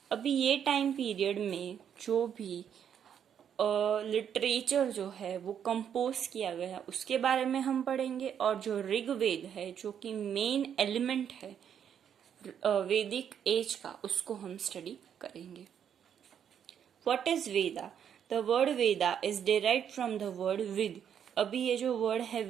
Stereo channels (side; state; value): left; quieter; 8.6 dB